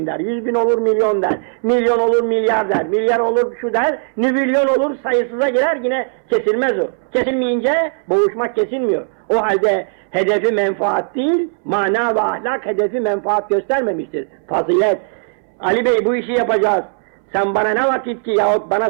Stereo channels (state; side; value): silent; left; 68 dB below the other